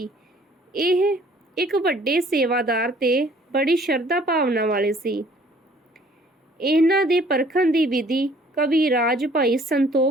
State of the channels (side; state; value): both; normal; correlation 0.57